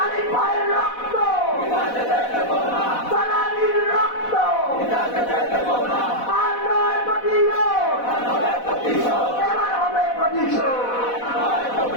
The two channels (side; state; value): right; late; 4.1 ms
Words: ভাইয়ের রক্ত সালামির রক্ত আর নয় প্রতিশোধ, এবার হবে প্রতিশোধ।